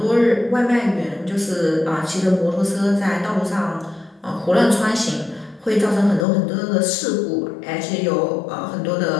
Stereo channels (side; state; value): right; drops out; at 6.2 s